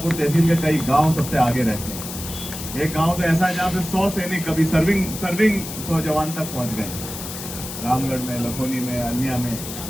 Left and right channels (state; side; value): noise; left; hiss, 9 dB below the sound